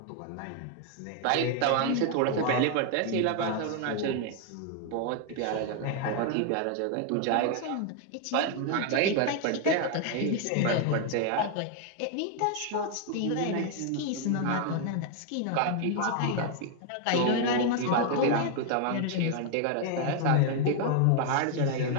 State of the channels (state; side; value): different; both; correlation 0.00